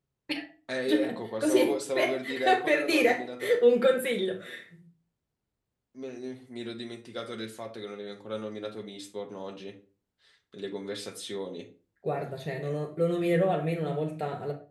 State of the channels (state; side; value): identical; both; correlation 1.00